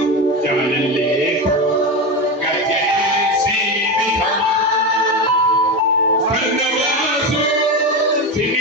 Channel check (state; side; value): normal; both; correlation 0.18